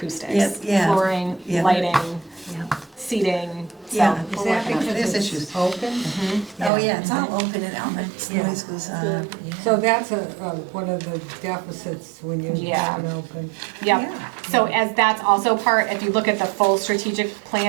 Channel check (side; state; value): left; drops out; at 6.7 s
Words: Yes, yeah. Flooring, Yeah. lighting, Yeah. seating, so Yeah. we're Is that working on it. There's because issues. it's open? Oh, yeah, it's all open and all that Yeah. noise goes on. So that's one of the deficits when you Yeah. have it open. Yep. Yeah. So as that's also part, if you look at the full strategic